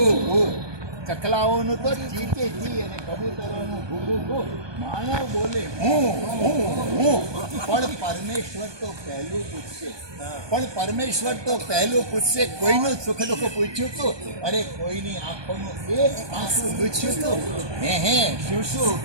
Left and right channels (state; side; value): late; left; 1.2 ms